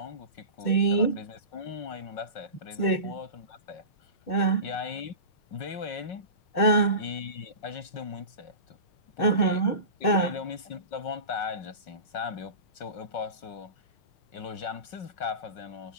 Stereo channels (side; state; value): right; late; 6.4 ms